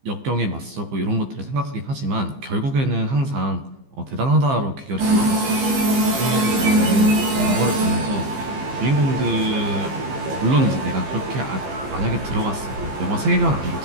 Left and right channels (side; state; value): left; late; 15 ms